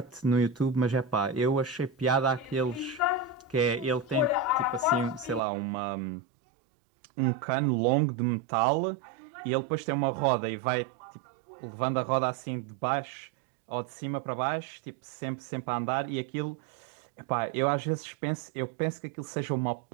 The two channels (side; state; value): left; drops out; at 5.4 s